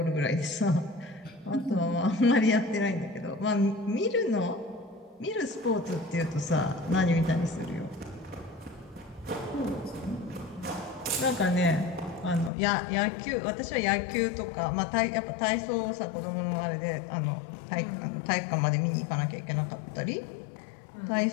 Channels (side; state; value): right; drops out; at 12.5 s